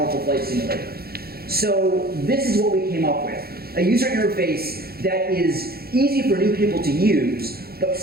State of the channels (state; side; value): late; left; 0.45 ms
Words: flight simulator. So this is what we came up with. A user interface that is easy for new people to use, but